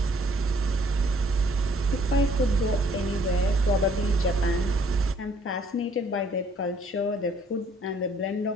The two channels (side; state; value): both; normal; correlation 0.63